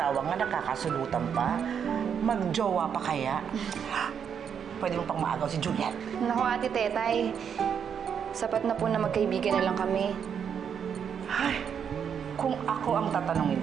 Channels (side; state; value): left; quieter; 7.6 dB